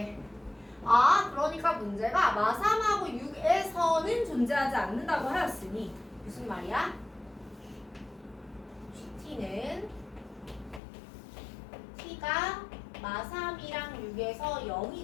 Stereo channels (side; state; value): right; drops out; at 10.8 s